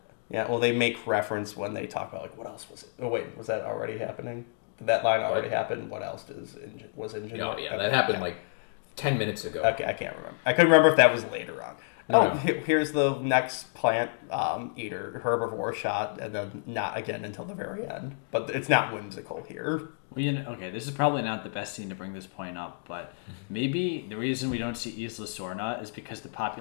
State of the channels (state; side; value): silent; right; digital silence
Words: Yeah, well, they make reference when they talk about, like, what else was it? Oh, wait, was that already happening? Did that line already happen? What else was InGen? Oh, yeah, that happened, like, 10 minutes ago. Okay, I can't remember. I couldn't remember if that was later on. No. Here's the next plant eater, herbivore shot, and then not again until the very end. But it's not whimsical here. Well, this is probably not the best scene to bring this point up, but maybe the reason we don't see Isla Sorna is because the